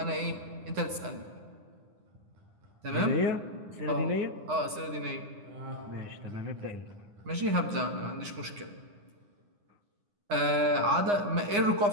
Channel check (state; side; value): late; left; 9.8 ms